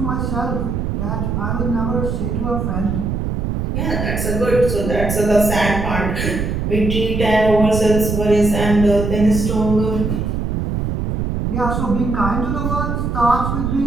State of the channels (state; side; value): noise; right; rumble, 1 dB below the sound